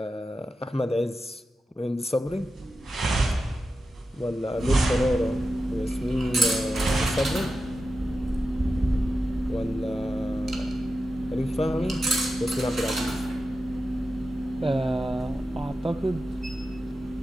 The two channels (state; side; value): normal; both; correlation 0.91